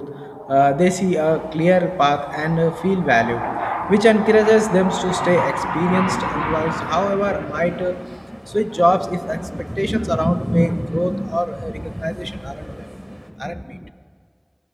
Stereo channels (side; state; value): both; identical; correlation 1.00